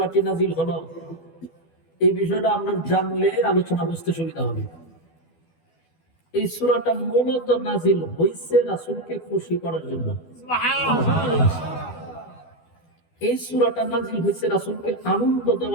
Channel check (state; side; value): late; right; 12 ms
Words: নাযিল হলো, এই বিষয়টা আমরা জানলে আলোচনা বুঝতে সুবিধা হবে। এই সূরাটা মূলত নাযিল হয়েছে রাসূলকে খুশি করার জন্য। এই সূরাটা নাযিল হয়েছে রাসূলকে আনন্দ